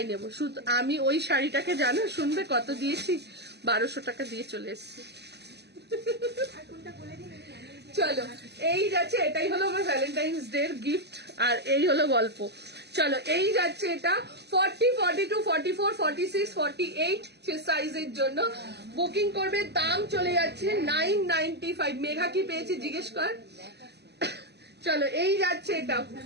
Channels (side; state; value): left; late; 0.49 ms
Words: নেব। শুধু আমি ওই শাড়িটাকে জানো শুনবে কত দিয়েছি? 1200 টাকা দিয়ে চলে এসেছি। চলো এই যাচ্ছে, এটাই হলো আমার ভ্যালেন্টাইন্স ডে এর গিফট, আর এই হলো গল্প। চলো এই যাচ্ছে এটা 40, 42, 44, 46, 48 সাইজের জন্য বুকিং করবে। দাম চলে যাচ্ছে 995। মেঘা কি পেয়েছি জিজ্ঞেস কর। চলো এই যাচ্ছে এটা,